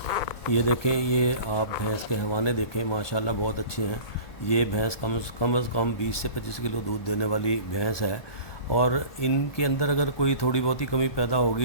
یہ دیکھیں، یہ آپ بھینس کے حوانے دیکھیں، ماشاءاللہ بہت اچھے ہیں۔ یہ بھینس کم از کم 20 سے 25 کلو دودھ دینے والی بھینس ہے، اور ان کے اندر اگر کوئی تھوڑی بہت ہی کمی پیدا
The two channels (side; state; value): right; late; 1.2 ms